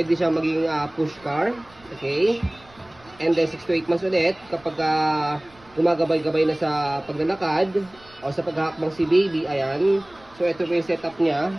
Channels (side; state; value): right; noise; rumble, 27 dB below the sound